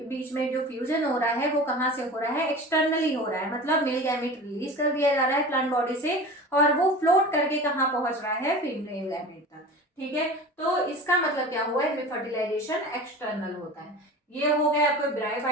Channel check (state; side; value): normal; both; correlation 0.35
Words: बीच में जो फ्यूजन हो रहा है वो कहाँ से हो रहा है, एक्सटर्नली हो रहा है, मतलब मेल गैमेट रिलीज कर दिया जा रहा है प्लांट बॉडी से और वो फ्लोट करके कहाँ पहुंच रहा है, फीमेल गैमेट तक। ठीक है, तो इसका मतलब क्या हुआ, इसमें फर्टिलाइजेशन एक्सटर्नल होता है। ये हो गए आपको